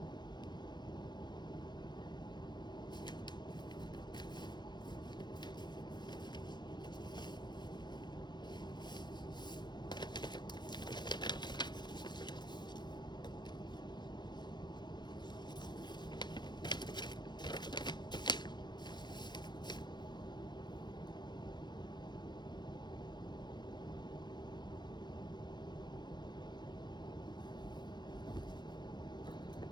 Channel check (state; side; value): late; right; 0.21 ms